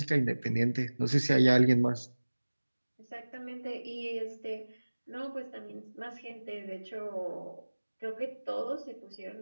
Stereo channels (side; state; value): both; inverted; correlation -1.00